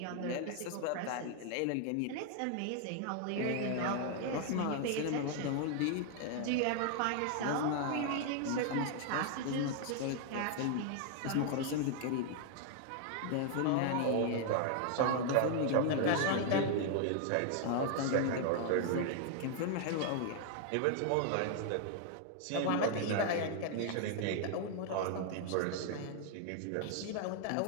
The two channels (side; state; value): both; different; correlation 0.00